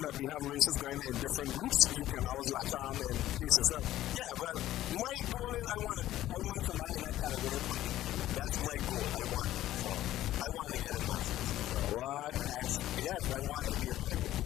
that we have races going in different groups, you can always latch on and pace yourself. Yeah, well, my goal is I want somebody in that category competing with me. That's my goal. I want that. So I want to get in Masters. So what? Yes, I want to be in Masters.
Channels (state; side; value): quieter; right; 14.0 dB